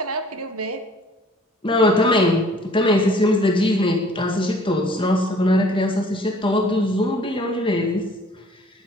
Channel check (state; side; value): normal; both; correlation 0.54